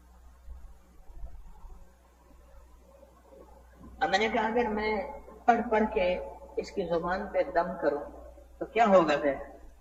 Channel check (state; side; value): identical; both; correlation 1.00